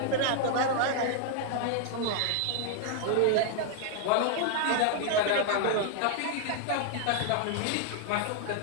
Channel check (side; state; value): both; different; correlation 0.00